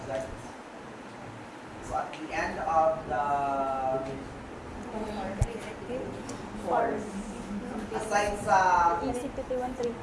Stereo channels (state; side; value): identical; both; correlation 1.00